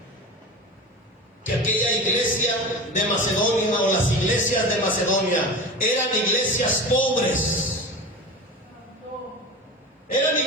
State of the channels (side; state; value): both; normal; correlation 0.30